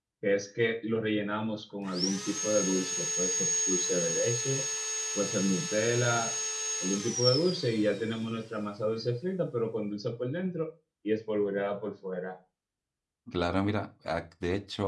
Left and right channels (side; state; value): both; identical; correlation 1.00